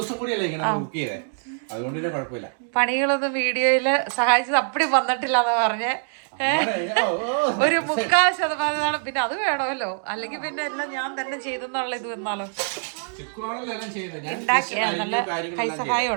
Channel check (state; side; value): silent; left; digital silence